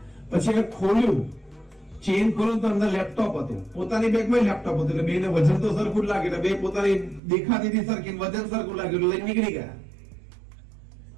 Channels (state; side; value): drops out; left; at 7.2 s